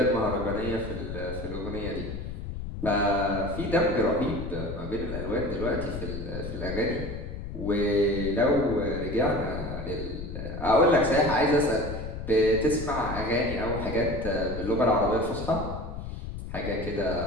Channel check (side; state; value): left; noise; rumble, 8 dB below the sound